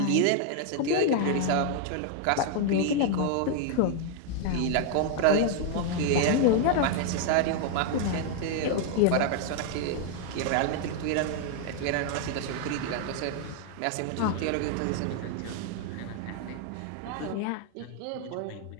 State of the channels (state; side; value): different; both; correlation 0.00